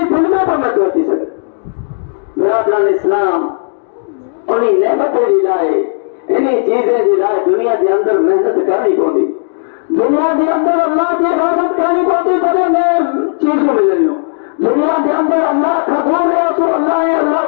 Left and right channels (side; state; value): right; silent; digital silence